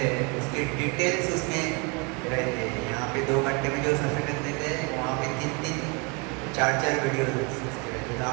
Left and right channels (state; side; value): quieter; left; 30.6 dB